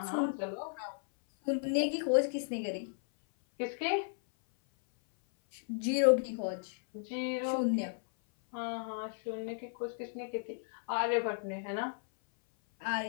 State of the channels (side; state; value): right; silent; 55 dB below the other